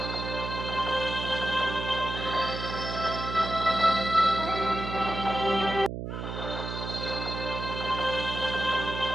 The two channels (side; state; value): right; noise; hum, 6 dB below the sound